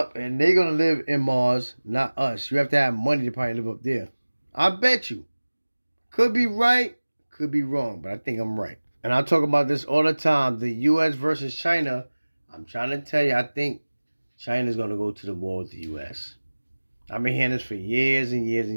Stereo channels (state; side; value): inverted; both; correlation -1.00